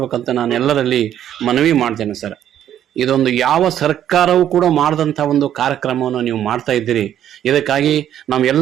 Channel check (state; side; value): quieter; left; 10.7 dB